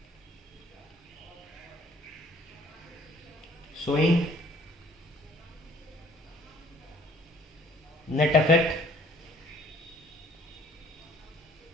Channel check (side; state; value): both; normal; correlation 0.57